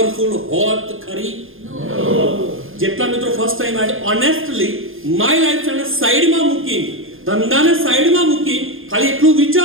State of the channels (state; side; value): late; left; 0.59 ms